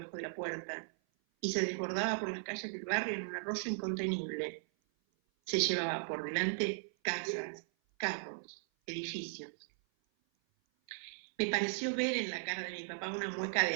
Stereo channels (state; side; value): silent; left; 53 dB below the other